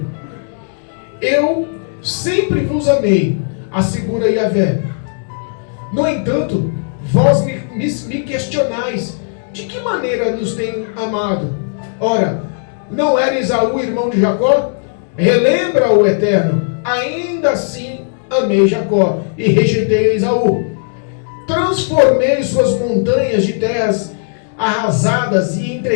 Eu sempre vos amei, assegura Yahvé. No entanto, vós me questionais, de que maneira nos tem amado? Ora, não era Esaú irmão de Jacó? Relembra o Eterno, ainda assim amei Jacó e rejeitei Esaú. Transformei suas montanhas de terras arrasadas e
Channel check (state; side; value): silent; right; digital silence